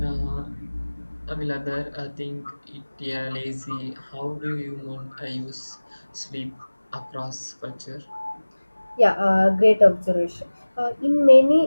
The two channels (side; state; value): both; inverted; correlation -1.00